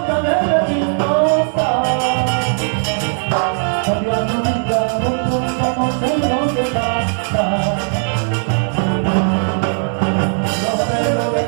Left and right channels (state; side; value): silent; left; digital silence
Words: de chismosa. Cambia tu vida, como tengo que pasar. No sé lo que